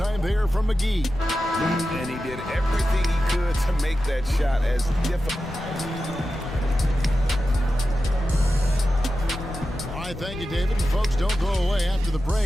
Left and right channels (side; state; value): left; noise; rumble, 13 dB below the sound